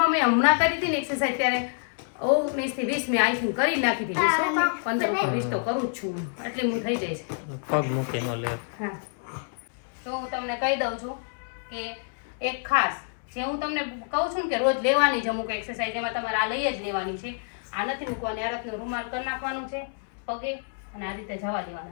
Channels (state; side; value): silent; right; 60 dB below the other